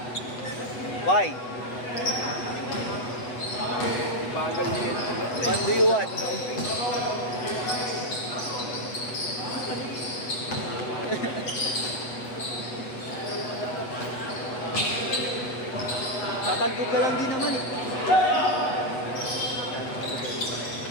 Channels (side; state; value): right; late; 8.1 ms